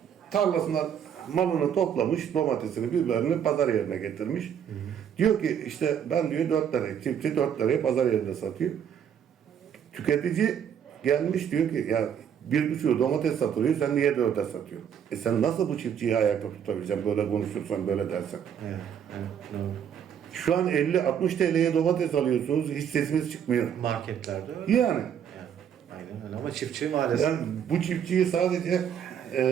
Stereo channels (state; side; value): quieter; left; 8.6 dB